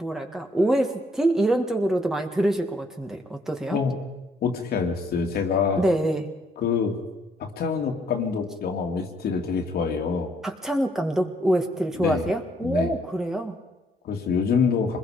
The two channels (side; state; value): both; normal; correlation 0.68